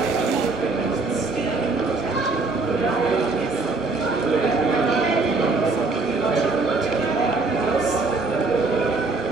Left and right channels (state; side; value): quieter; left; 3.8 dB